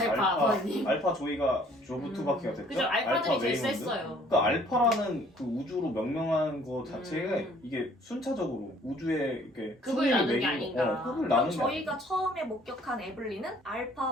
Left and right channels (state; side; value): normal; both; correlation 0.58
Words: 아버님. 알파 조이가 조브 투바키가 됐죠. 그죠. 알파들이 제일 웨이먼드. 셌어요. 그러니까 알파라는 그 우주로 명명한 거 자체가 음. 이게 순차적으로 우주에 이렇게 급을 순위를 나눈 게 매기고, 아닌가. 급을 그럼 나눈 게 저희가 처음에 목격한 에블린은